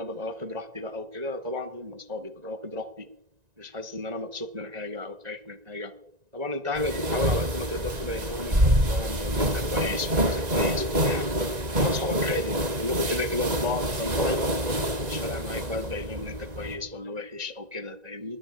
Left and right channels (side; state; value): left; late; 1.9 ms